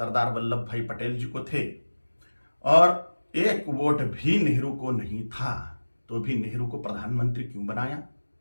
वल्लभ भाई पटेल जी को थे और 1 वोट भी नेहरू को नहीं था, तो भी नेहरू को प्रधानमंत्री क्यों बनाया?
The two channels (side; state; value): both; inverted; correlation -1.00